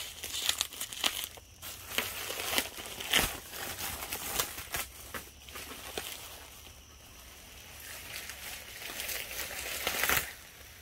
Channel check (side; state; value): both; identical; correlation 1.00